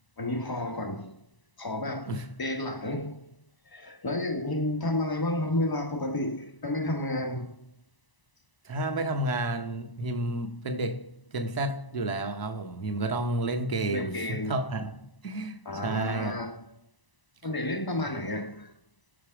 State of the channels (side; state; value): right; late; 1.0 ms